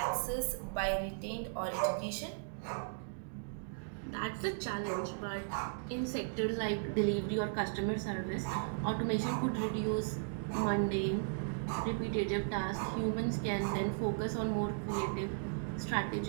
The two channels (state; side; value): silent; left; digital silence